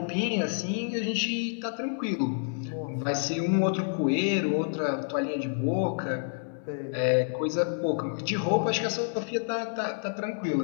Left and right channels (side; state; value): right; silent; digital silence